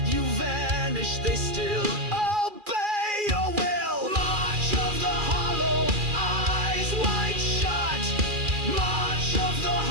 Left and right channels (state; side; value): late; left; 2.4 ms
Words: You vanish, they still obey your will. March of the hollow, eyes wide shut. March of the